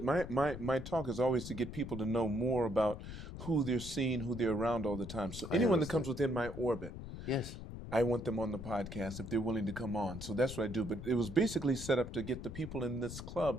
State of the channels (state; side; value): noise; left; rumble, 9 dB below the sound